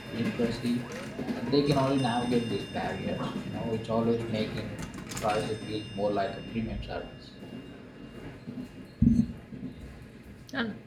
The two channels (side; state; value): both; identical; correlation 1.00